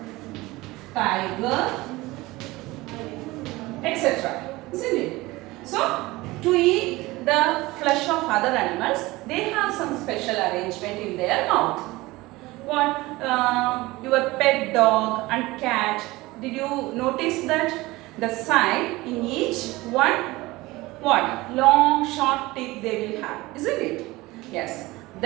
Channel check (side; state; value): left; quieter; 20.3 dB